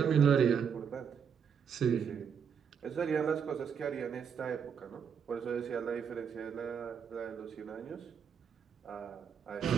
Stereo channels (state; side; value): quieter; left; 7.2 dB